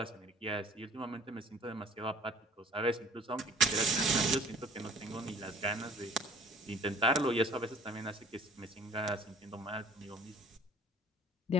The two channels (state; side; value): normal; both; correlation 0.50